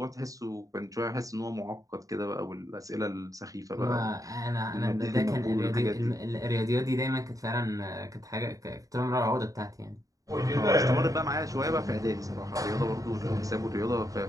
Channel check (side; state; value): left; late; 0.16 ms